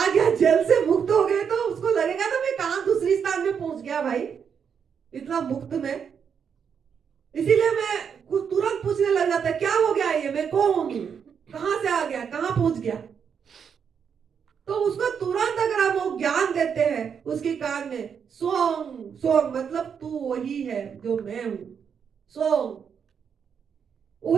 गया, जेल से मुक्त हो गए, तो उसको लगेगा ना मैं कहां दूसरी स्थान में पहुंच गया भाई, इतना मुक्त में। इसीलिए मैं कुछ तुरंत पूछने लग जाता है, क्या हो गया ये, मैं कौन हूं, कहां से आ गया, कहां पहुंच गया। तो उसको तुरंत अगर हम वो ज्ञान देते हैं उसके कान में, सोंग सोंग मतलब तू वही है जो मैं हूं, सोंग,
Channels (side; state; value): left; quieter; 7.1 dB